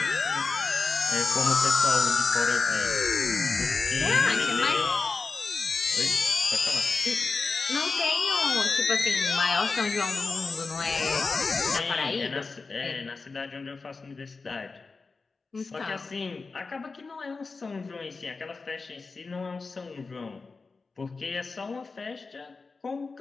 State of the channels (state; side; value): quieter; right; 4.2 dB